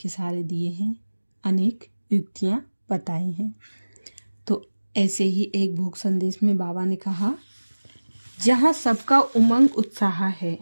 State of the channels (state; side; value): inverted; both; correlation -1.00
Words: इशारे दिए हैं, अनेक युक्तियां बताई हैं। तो ऐसे ही एक भोग संदेश में बाबा ने कहा, जहाँ सबका उमंग उत्साह है,